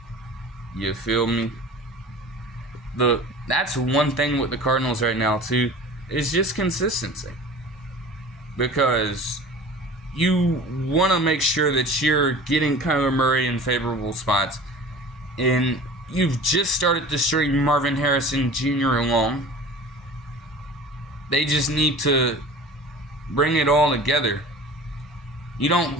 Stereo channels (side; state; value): both; normal; correlation 0.40